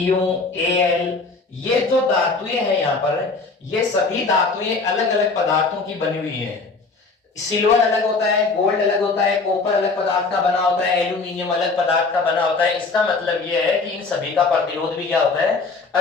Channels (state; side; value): quieter; right; 4.0 dB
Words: Al, ये जो धातुएं हैं यहां पर, ये सभी धातुएं अलग अलग पदार्थों की बनी हुई हैं। सिल्वर अलग होता है, गोल्ड अलग होता है, कॉपर अलग पदार्थ का बना होता है, एल्यूमिनियम अलग पदार्थ का बना होता है। इसका मतलब यह है कि इन सभी का प्रतिरोध भी क्या होता है,